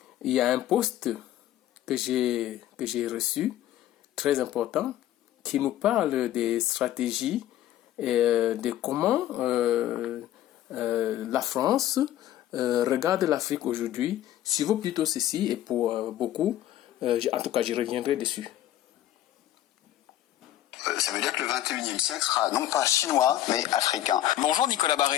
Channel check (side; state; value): right; quieter; 12.9 dB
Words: il y a un post que j'ai reçu, très important, qui nous parle des stratégies et de comment la France regarde l'Afrique aujourd'hui. Si vaut plutôt ceci, et pour beaucoup, en tout cas je reviendrai dessus. Ça veut dire que le 21e siècle sera non pas chinois, mais africain. Bonjour Nicolas